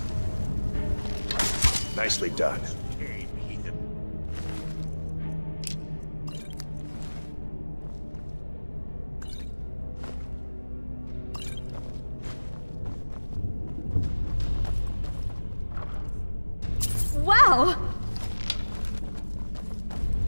Nicely done. Wow!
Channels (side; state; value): both; inverted; correlation -1.00